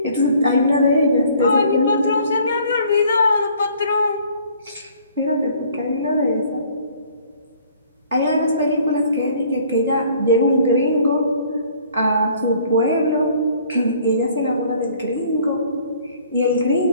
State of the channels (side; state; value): both; inverted; correlation -0.56